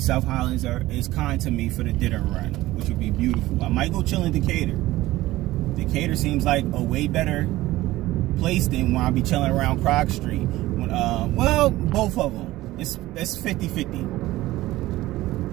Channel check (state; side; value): quieter; left; 17.1 dB